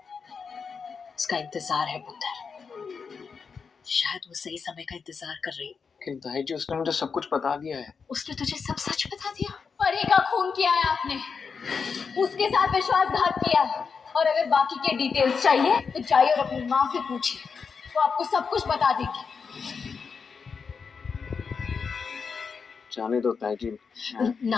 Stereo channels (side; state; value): right; quieter; 5.6 dB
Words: उसका इंतजार है पुत्र। शायद वो सही समय का इंतजार कर रही है। लेकिन ताई जी उसने मुझे सब कुछ बता दिया है। उसने तुझे सब सच बता दिया? परी का खून किया है आपने, उसके साथ विश्वासघात किया है, और अगर बाकी के डिटेल्स चाहिए तो जाइए और अपनी माँ से पूछिए, वो आपको सब कुछ बता देगी। जाने दो ताई जी।